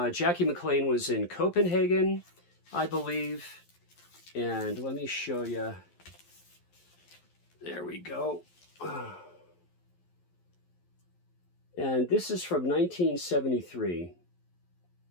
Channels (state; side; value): late; right; 11 ms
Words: Jackie McLean was in Copenhagen, I believe. And let me show you. There we go. And this is from 1973.